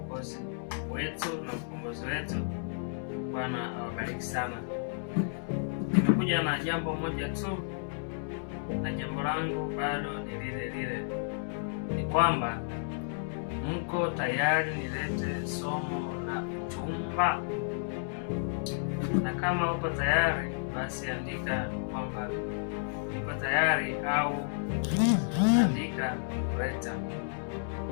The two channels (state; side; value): silent; right; digital silence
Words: wetu na mkombozi wetu. Bwana awabariki sana. Nimekuja na jambo moja tu, na jambo langu bado ni lile lile, ni kwamba mko tayari nilete somo la uchumba? Na kama uko tayari, basi andika kwamba niko tayari, au andika leta,